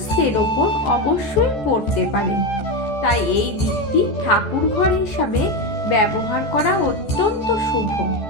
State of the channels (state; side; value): late; right; 14 ms